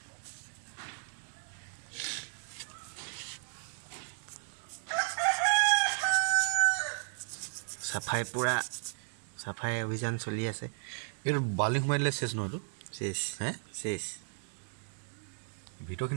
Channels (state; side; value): silent; left; digital silence